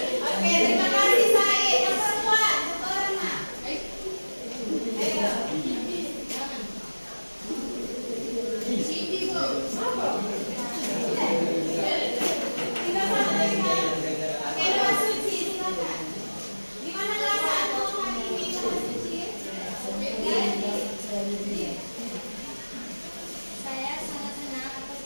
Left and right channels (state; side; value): inverted; both; correlation -1.00